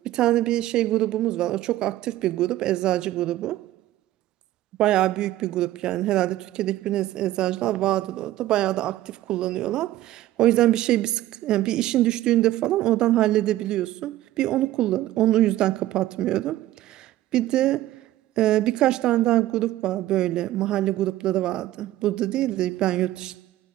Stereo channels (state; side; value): quieter; left; 14.8 dB